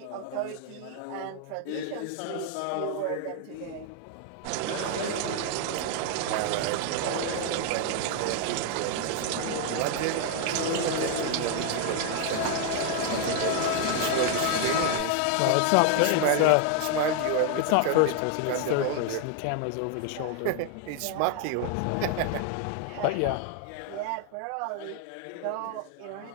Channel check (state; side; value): different; both; correlation 0.00